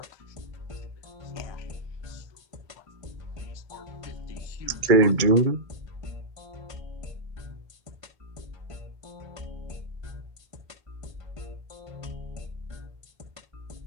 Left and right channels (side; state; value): left; late; 2.3 ms